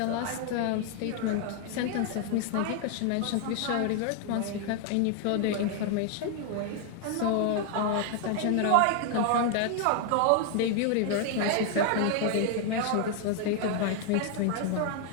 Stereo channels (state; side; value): different; both; correlation 0.00